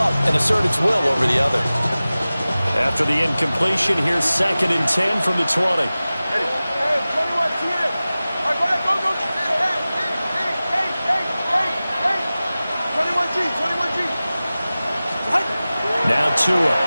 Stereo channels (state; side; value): inverted; both; correlation -0.97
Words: and assert its will over the other. After the incompletion, here's 2nd and 10 from the 20. Hey, 21, see it. All right, go ahead, go. Hey. 21G, 21G. Now Tua.